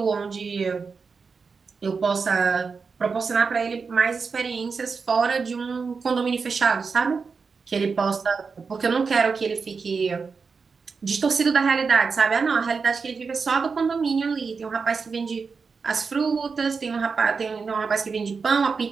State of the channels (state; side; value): quieter; left; 5.1 dB